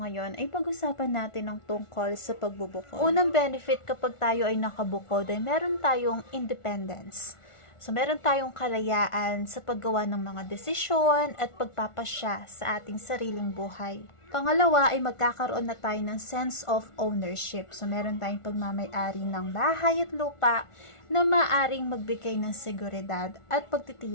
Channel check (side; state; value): right; late; 1.4 ms